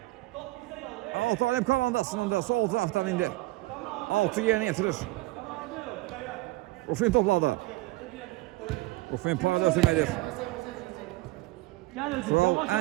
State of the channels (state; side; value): quieter; left; 20.4 dB